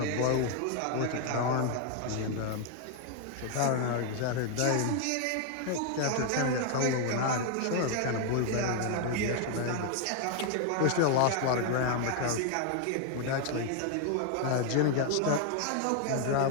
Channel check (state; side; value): different; both; correlation 0.00